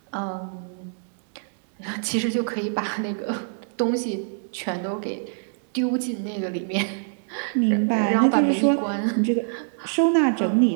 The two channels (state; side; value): silent; left; digital silence